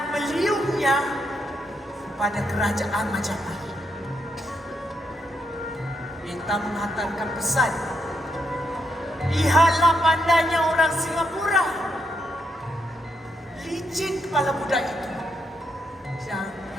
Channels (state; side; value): normal; both; correlation 0.78